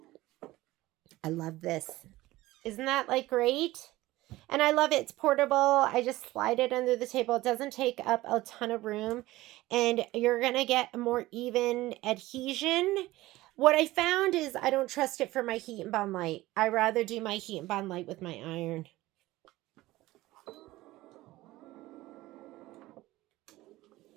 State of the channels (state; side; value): quieter; left; 17.9 dB